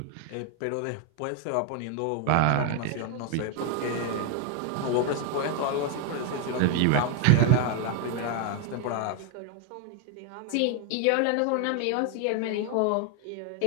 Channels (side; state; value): both; different; correlation 0.01